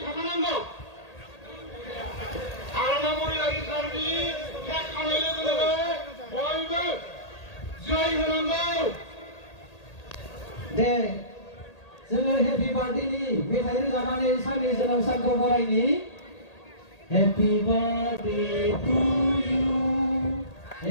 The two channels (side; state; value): right; late; 1.8 ms